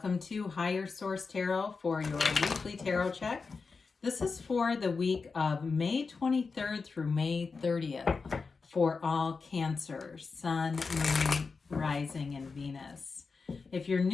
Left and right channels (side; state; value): right; quieter; 4.7 dB